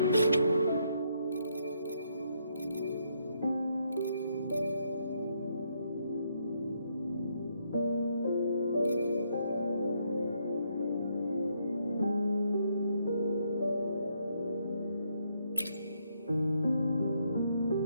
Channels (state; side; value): inverted; both; correlation -0.75